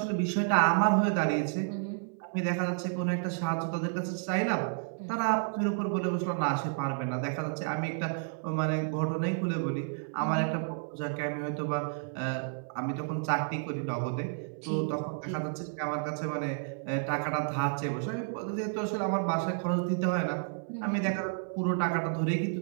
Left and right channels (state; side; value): silent; left; 57 dB below the other